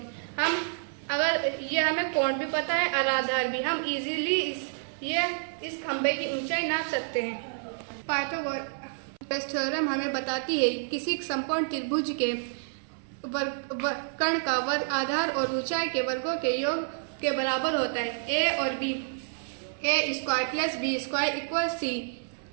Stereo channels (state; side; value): silent; left; 57 dB below the other